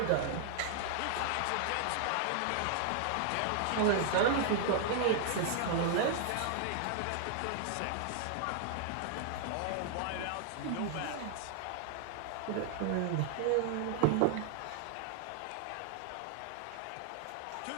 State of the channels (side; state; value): both; different; correlation 0.00